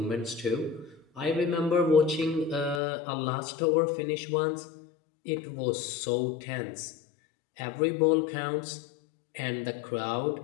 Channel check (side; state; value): right; drops out; at 2.8 s